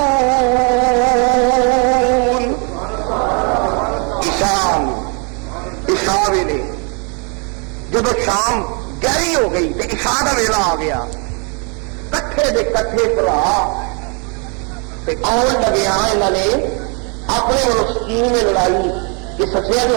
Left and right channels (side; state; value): left; quieter; 35.6 dB